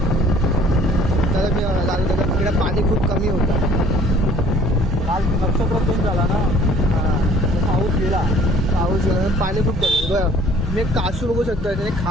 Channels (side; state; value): both; normal; correlation 0.54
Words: तर मी तिकडे पाणी खूप कमी होतं. काल नक्षत्र चेंज झाला ना, पाऊस गेला. पाऊस पाणी खूप कमी. बरं मी कासू बघू शकतो, त्याने